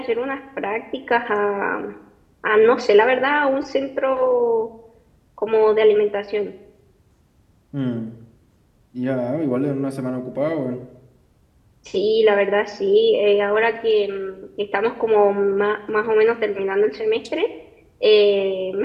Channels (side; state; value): both; identical; correlation 1.00